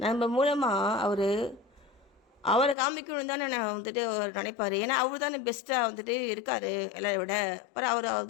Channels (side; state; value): right; drops out; at 2.8 s